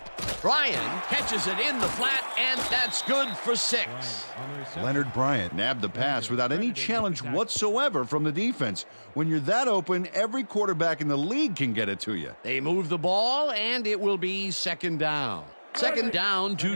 Bryan catches it in the flat, and that's good for 6. On the reception. Leonard Bryant nabbed the pass without any challenge whatsoever from the defense. When you're that open, every quarterback in the league can get it to you. They move the ball, and it will be second down. Second down,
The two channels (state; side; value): inverted; both; correlation -1.00